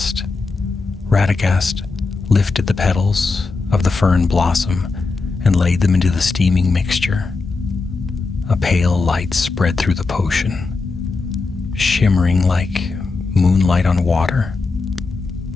Radagast lifted the petals of the fern blossom and laid them into the steaming mixture. A pale light spread through the potion, shimmering like moonlight on water.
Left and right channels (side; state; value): right; quieter; 4.0 dB